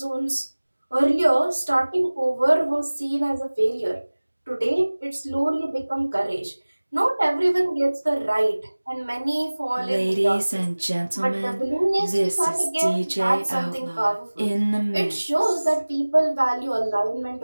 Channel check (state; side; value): inverted; both; correlation -1.00